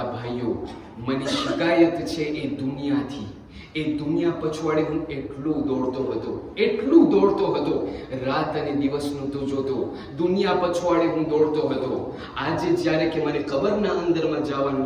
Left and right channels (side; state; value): both; identical; correlation 1.00